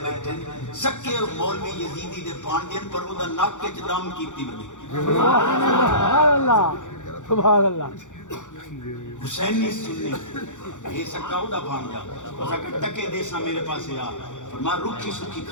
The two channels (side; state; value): right; late; 0.86 ms